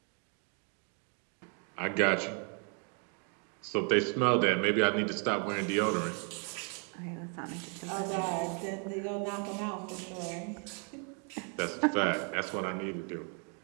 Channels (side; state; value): left; quieter; 39.5 dB